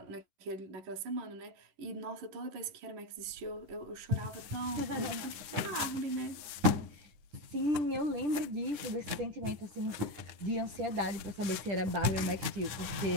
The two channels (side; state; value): left; late; 9.7 ms